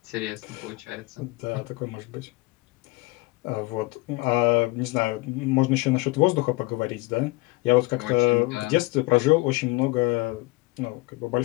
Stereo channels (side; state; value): right; quieter; 23.1 dB